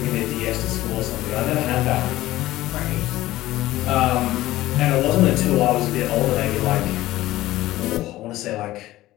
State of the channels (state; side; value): quieter; right; 16.2 dB